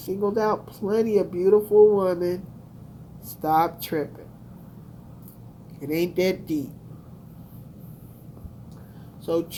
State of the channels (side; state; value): both; identical; correlation 1.00